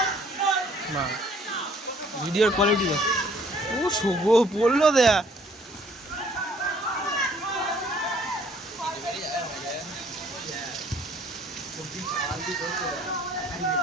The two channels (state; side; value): normal; both; correlation 0.59